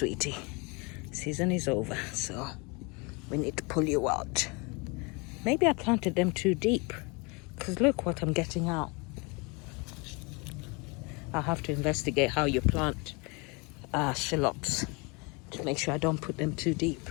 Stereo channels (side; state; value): right; quieter; 29.4 dB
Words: Season is over, so we need to pull you out. Maybe I planted them too deep, because look what I'm getting out. I'll have to investigate how you plant shallots to make sure I don't put them too deep.